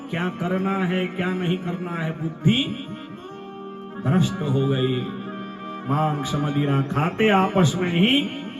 क्या करना है क्या नहीं करना है, बुद्धि भ्रष्ट हो गई। मांस मदिरा खाते आपस में ही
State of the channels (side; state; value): both; identical; correlation 1.00